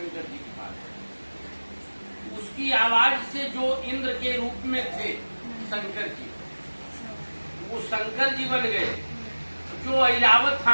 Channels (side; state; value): both; inverted; correlation -1.00